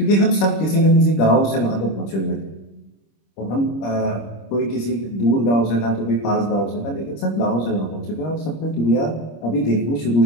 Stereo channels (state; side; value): late; right; 25 ms